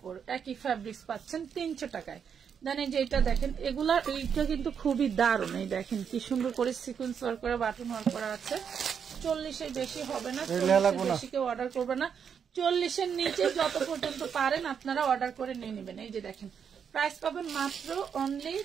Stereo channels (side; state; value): left; quieter; 7.3 dB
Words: একই ফ্যাব্রিক্স পাচ্ছেন 300 টাকায়। দেন এই যে এটা দেখেন, এগুলা এইটা কিন্তু খুবই দারুণ। এই দেখেন কি সুন্দর করে সিকোয়েন্স ওয়ার্ক করে বাটন ওয়ার্ক করা আছে। 40-এর বেশি হবে না, 40-এর বেশি কেউ অর্ডার করবে না। 40-এর নিচে যত পর্যন্ত পারেন আপনারা অর্ডার করে নিয়ে নেবেন। এই যে দেখেন, প্রাইস পাবেন মাত্র অনলি